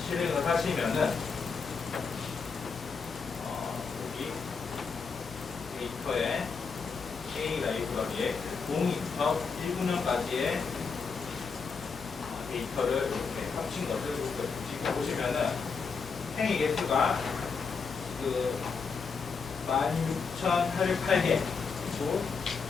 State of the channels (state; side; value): quieter; right; 5.2 dB